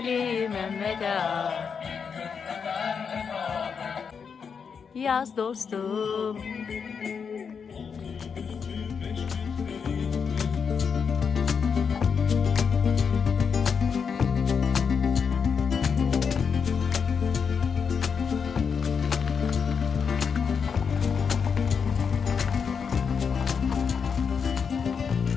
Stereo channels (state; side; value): quieter; right; 6.3 dB